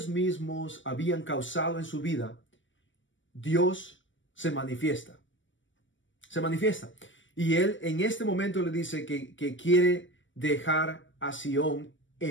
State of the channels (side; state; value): right; late; 0.56 ms